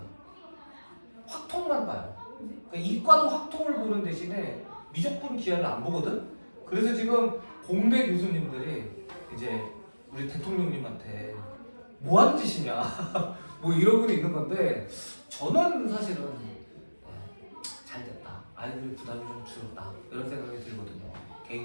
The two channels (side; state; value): both; inverted; correlation -1.00